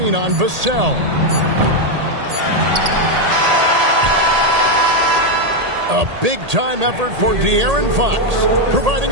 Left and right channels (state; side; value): late; left; 1.8 ms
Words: on Vassell. A big-time effort for De'Aaron Fox,